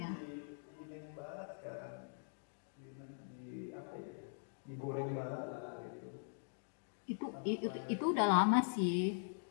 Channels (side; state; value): right; silent; digital silence